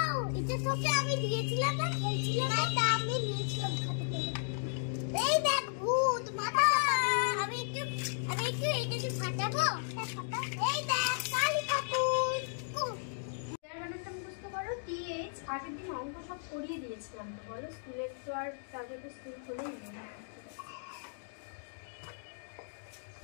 এটা তোকে আমি দিয়েছিলাম না, খেলছিলাম না, তা আমি নিয়েছিলাম খাতে থেকে। এই দেখ ভূত মাথা। আমি একটু এইটাকে ফাটাবো। এই দেখ কালী ঠাকুর। বানানটা মুখস্থ করো। টিএইচ আগের দিন অঙ্ক সব করিয়ে দিয়েছিলাম তো, বলো স্কুলের তো আর তারপরে তো স্কুল খুলেই না।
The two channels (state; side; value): silent; right; digital silence